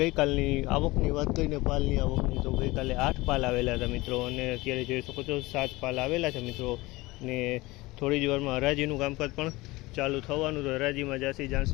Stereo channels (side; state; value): right; quieter; 21.1 dB